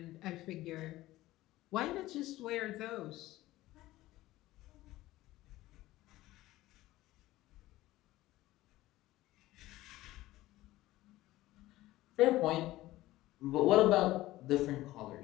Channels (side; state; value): right; quieter; 16.8 dB